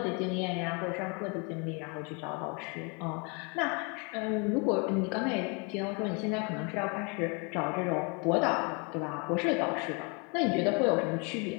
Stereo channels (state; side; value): quieter; right; 32.8 dB